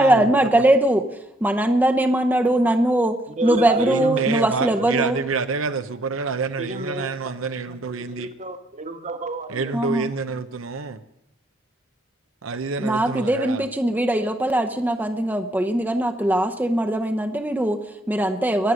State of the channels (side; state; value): both; normal; correlation 0.70